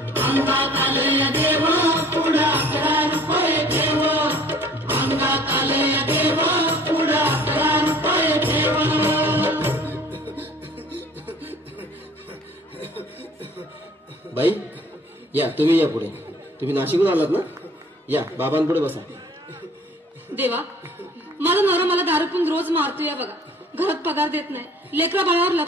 आलंय देव पुढं 11 रुपये ठेव अंगात आलंय देव पुढं 11 रुपये ठेव बाई या तुम्ही या पुढे तुम्ही नाशिकहून आलात ना या बाबांपुढे बसा देवा माझा नवरा मला दारू पिऊन रोज मारतोय बघा घरात पगार देत नाही लेकरा बाळावर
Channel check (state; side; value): normal; both; correlation 0.51